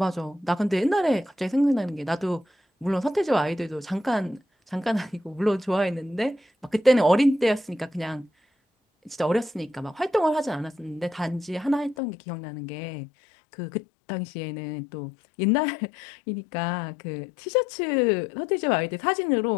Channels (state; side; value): drops out; right; at 12.0 s